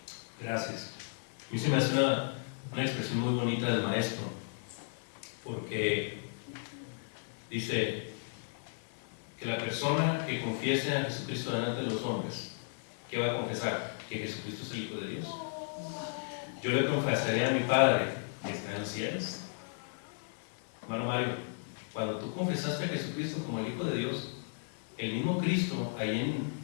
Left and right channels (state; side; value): silent; right; 55 dB below the other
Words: Gracias. A mí se me hace una expresión muy bonita del maestro, porque dice que la persona que confiese a Jesucristo delante de los hombres, ¿qué va a confesar? Que Jesucristo es el Hijo de Dios. Yo le confesaré a mi Padre que está en los cielos. Hermano Mario, cuando tú confesaste a Jesucristo como el Hijo de Dios, el mismo Cristo, ahí